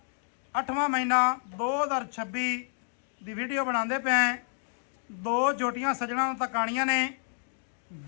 8ਵਾਂ ਮਹੀਨਾ 2026 ਦੀ ਵੀਡੀਓ ਬਣਾਉਂਦੇ ਪਏ ਆਂ। 2 ਜੋਟੀਆਂ ਸੱਜਣਾਂ ਨੂੰ ਤਕਾਣੀਆਂ ਨੇ।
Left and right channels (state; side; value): silent; right; 58 dB below the other